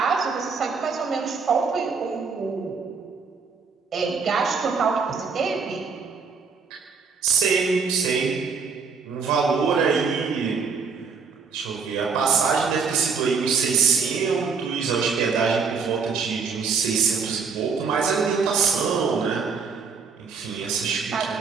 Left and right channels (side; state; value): left; quieter; 5.3 dB